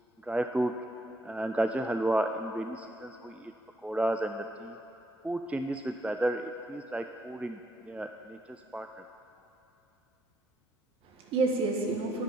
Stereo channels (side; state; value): both; normal; correlation 0.74